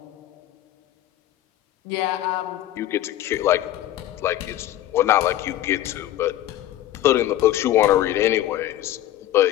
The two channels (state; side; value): quieter; right; 13.4 dB